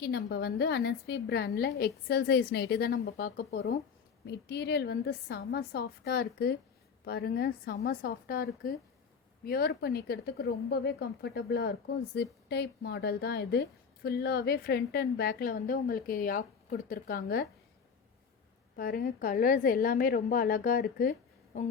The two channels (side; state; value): right; quieter; 6.1 dB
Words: நம்ம வந்து அனஸ்வி பிராண்டில் எக்ஸல் சைஸ் நைட்டி தான் நம்ம பார்க்க போகிறோம். மெட்டீரியல் வந்து செம சாஃப்டாக இருக்குது. பாருங்கள், செம சாஃப்டாக இருக்குது. வியர் பண்ணிக்கிறதுக்கு ரொம்பவே கம்ஃபர்டபுளாக இருக்கும். ஜிப் டைப் மாடல் தான் இது. ஃபுல்லாகவே ஃப்ரண்ட் அண்ட் பேக்கில் வந்து உங்களுக்கு யாக் கொடுத்துருக்காங்க. பாருங்கள், கலர்ஸ் எல்லாமே ரொம்ப அழகாக இருக்குது.